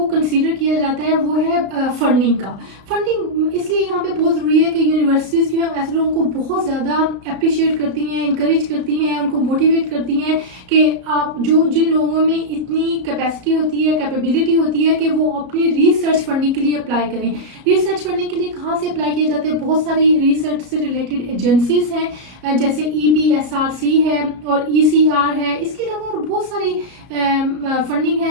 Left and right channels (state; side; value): late; left; 33 ms